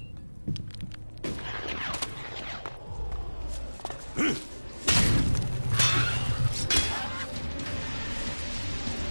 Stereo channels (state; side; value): inverted; both; correlation -1.00